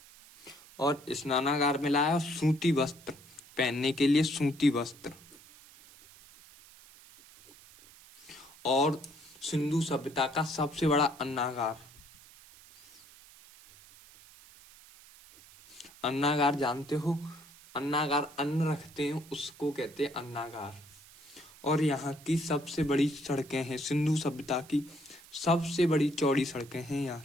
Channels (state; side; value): noise; right; hiss, 22 dB below the sound